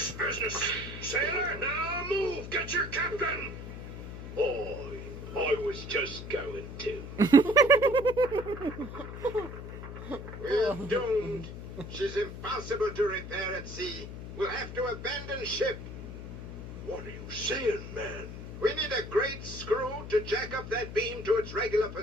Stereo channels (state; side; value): noise; left; hum, 9 dB below the sound